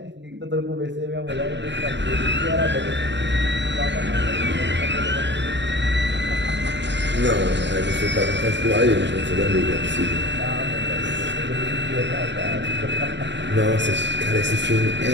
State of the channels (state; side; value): late; left; 0.52 ms